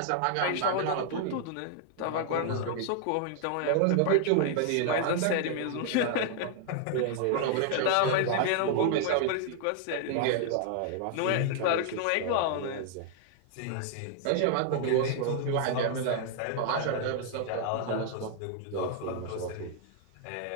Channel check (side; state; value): both; different; correlation 0.00